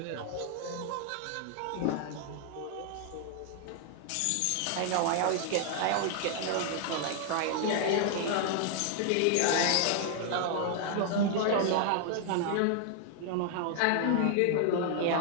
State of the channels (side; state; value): both; different; correlation 0.00